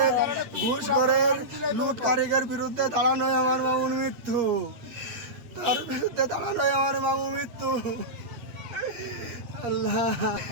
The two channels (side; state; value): left; late; 8.2 ms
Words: ঘুষ করে লুট কারিগের বিরুদ্ধে দাঁড়ানোই আমার মামুর মৃত্যু তার বিরুদ্ধে দাঁড়ানোই আমার মামুর মৃত্যু আল্লাহ